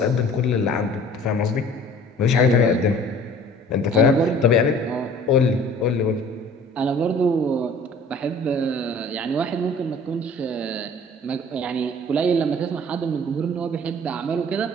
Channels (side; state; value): both; normal; correlation 0.49